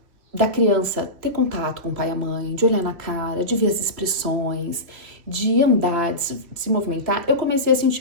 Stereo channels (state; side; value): late; left; 3.0 ms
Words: da criança ter contato com o pai e a mãe, de olhar na cara, de ver as expressões, de andar, de se movimentar, eu comecei a